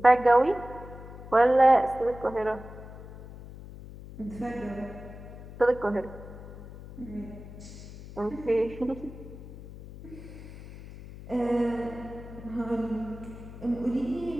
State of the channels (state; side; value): noise; left; hum, 14 dB below the sound